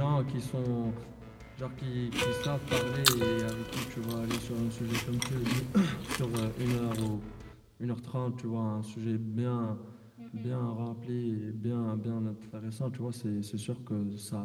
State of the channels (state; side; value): identical; both; correlation 1.00